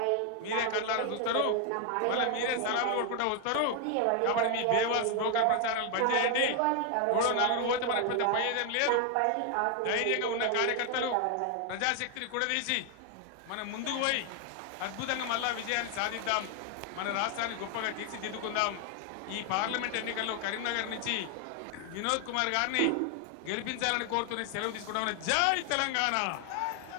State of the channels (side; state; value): both; different; correlation 0.00